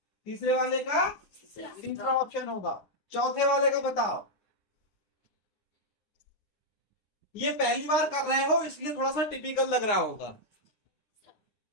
तीसरे वाले का तीसरा ऑप्शन होगा। चौथे वाले का बताओ, ये पहली बार कर रहे हो इसलिए थोड़ा सा टिपिकल लग रहा होगा।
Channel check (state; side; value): late; right; 9.9 ms